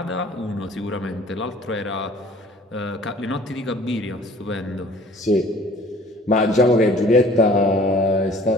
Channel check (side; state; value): both; normal; correlation 0.51